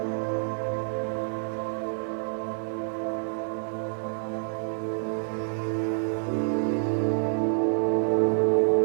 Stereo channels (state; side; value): silent; left; digital silence